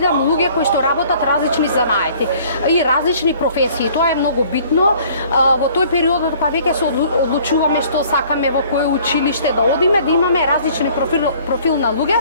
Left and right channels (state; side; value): inverted; both; correlation -0.55